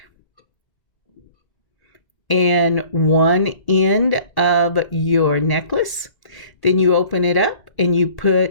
in one end of your necklace. Then you open it up and you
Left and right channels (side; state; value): right; late; 1.9 ms